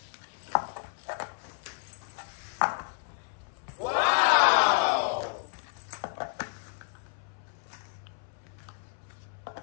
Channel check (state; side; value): silent; right; 57 dB below the other